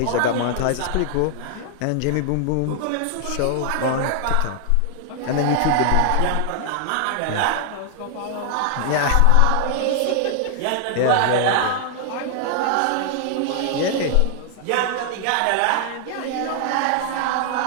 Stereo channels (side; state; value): both; different; correlation 0.00